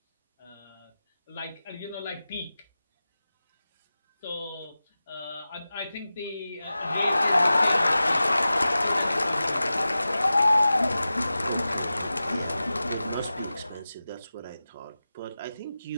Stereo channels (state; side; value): inverted; both; correlation -0.95